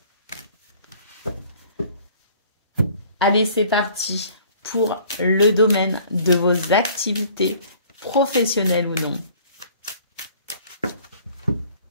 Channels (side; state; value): both; inverted; correlation -0.53